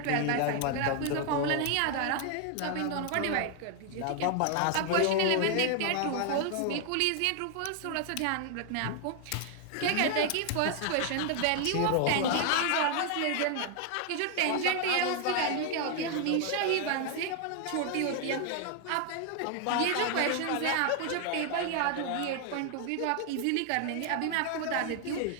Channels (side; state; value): both; different; correlation 0.00